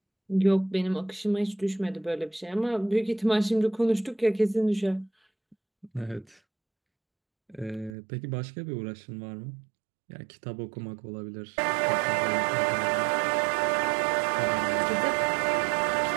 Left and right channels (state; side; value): drops out; left; at 8.0 s